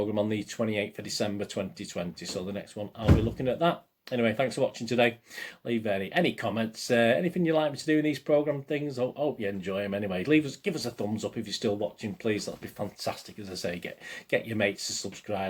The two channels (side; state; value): both; identical; correlation 1.00